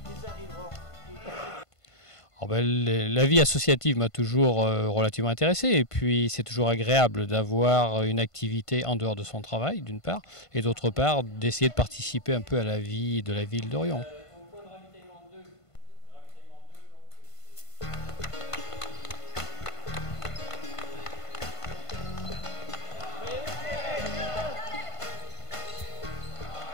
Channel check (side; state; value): right; late; 1.5 ms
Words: La vie associative m'a toujours relativement intéressé, et puis c'est toujours agréable d'avoir une activité en dehors de son travail d'une part, et d'autre part d'essayer de participer un peu à la vie de la ville d'Orion.